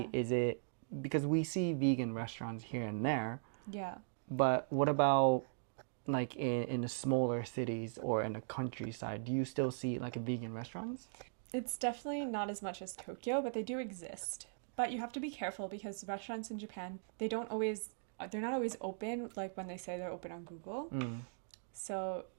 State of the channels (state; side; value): silent; left; digital silence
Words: is it because we see vegan restaurants here and there? Yeah. But what about like in the smaller cities or in the countryside? Do you still see like vegan restaurants? It's definitely not as much as Tokyo, but they do exist. But you have to be careful because restaurants in Japan, they're not always open like when they say they're open on Google. So